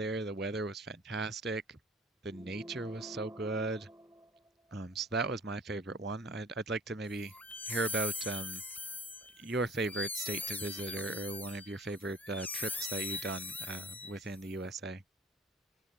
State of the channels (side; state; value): both; normal; correlation 0.46